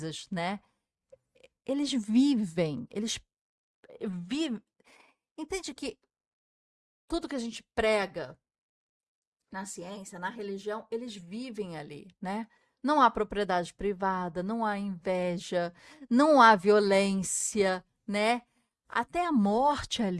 né? Eles vivem. Entende que tudo que a gente prega na ciência, na religião, eles vivem ali, né? Não há propriedade privada, não há inveja, não há violência, né? Até a morte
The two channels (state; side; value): identical; both; correlation 1.00